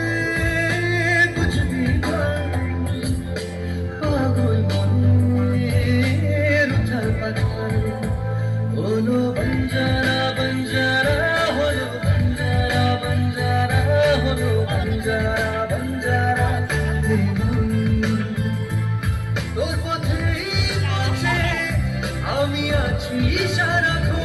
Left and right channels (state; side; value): identical; both; correlation 1.00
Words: বুঝবি পাগল মনের উথাল পাথাল হলো বঞ্জারা বঞ্জারা হলো বঞ্জারা বঞ্জারা হলো বঞ্জারা বঞ্জারা তোর পথেই পথে আমি আছি